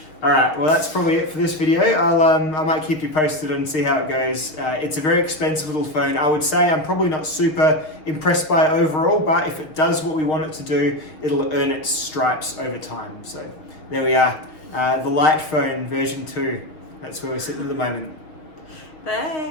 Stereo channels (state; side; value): late; right; 6.3 ms